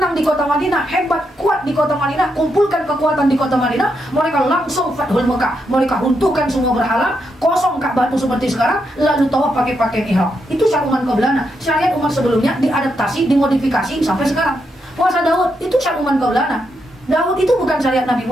di kota Madinah, hebat, kuat di kota Madinah, kumpulkan kekuatan di kota Madinah, mereka langsung Fathul Mekah, mereka runtuhkan semua berhala, kosong Ka'bah itu seperti sekarang, lalu tawaf pakai pakaian ihram. Itu syariat umat qablana. Syariat umat sebelumnya diadaptasi, dimodifikasi sampai sekarang. Puasa Daud itu syariat umat qablana. Daud itu bukan syariat Nabi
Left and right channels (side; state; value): both; normal; correlation 0.81